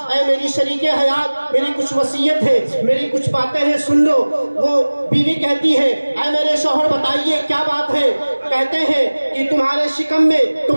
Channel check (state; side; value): inverted; both; correlation -1.00